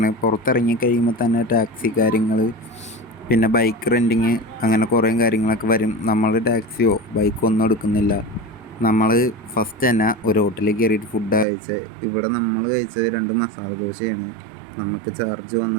പുറത്തിറങ്ങി കഴിയുമ്പോൾ തന്നെ ടാക്സി കാര്യങ്ങൾ, പിന്നെ ബൈക്ക് റെൻറ്റിങ്, അങ്ങനെ കുറേ കാര്യങ്ങളൊക്കെ വരും. നമ്മൾ ടാക്സിയോ ബൈക്കോ ഒന്നും എടുക്കുന്നില്ല. നമ്മൾ ഫസ്റ്റ് തന്നെ ഒരു ഹോട്ടലിൽ കയറിയിട്ട് ഫുഡ് കഴിച്ചത്. ഇവിടെ നമ്മൾ കഴിച്ചത് 2 മസാല ദോശയാണ്. നമുക്ക് ചാർജ്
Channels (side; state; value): left; drops out; at 11.5 s